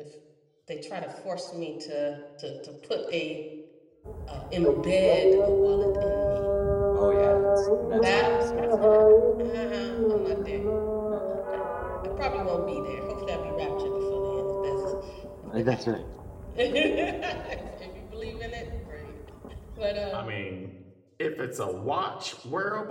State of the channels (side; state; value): both; identical; correlation 1.00